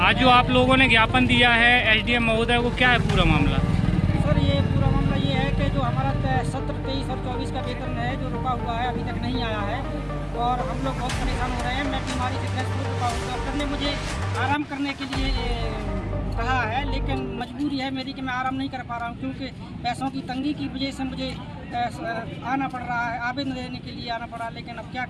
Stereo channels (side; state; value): both; identical; correlation 1.00